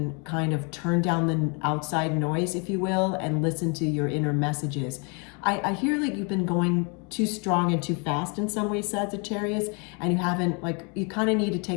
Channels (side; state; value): right; quieter; 34.4 dB